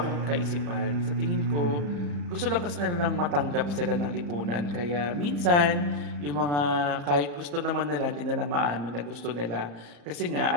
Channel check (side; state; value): left; late; 34 ms